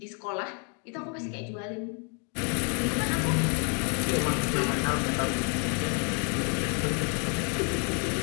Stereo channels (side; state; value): right; quieter; 38.5 dB